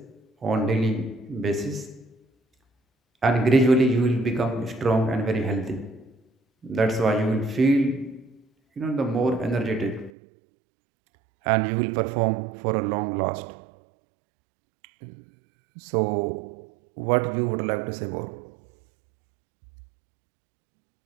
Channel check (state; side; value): drops out; left; at 10.1 s